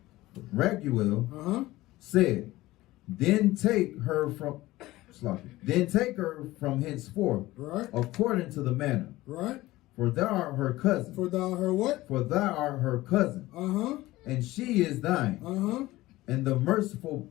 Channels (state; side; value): quieter; right; 17.8 dB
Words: Raguel said, Then take her from henceforth, right, according to the manner. Right. For thou art her cousin. For thou her what? For thou art her cousin. And she is thine. And the merciful